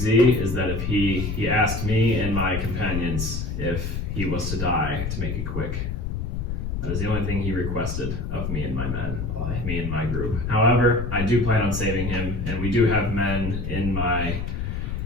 is that if he asked me and my companions if he was to die, to make it quick. That is the only thing he requested of me and my men, me and my group. However, I do plan on saving him, and we do have men in my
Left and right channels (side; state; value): left; noise; rumble, 3 dB below the sound